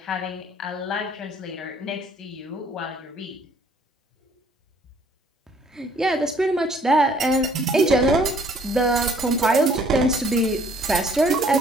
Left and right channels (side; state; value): both; normal; correlation 0.60